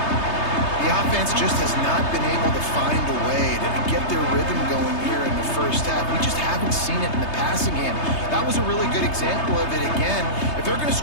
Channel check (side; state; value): right; late; 3.3 ms